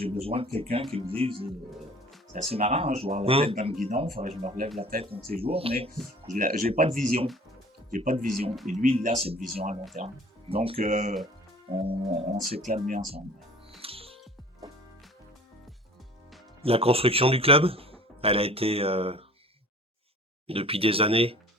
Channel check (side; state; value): both; normal; correlation 0.47